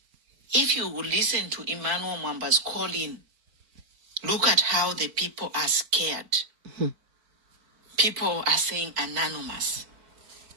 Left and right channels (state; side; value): late; left; 4.5 ms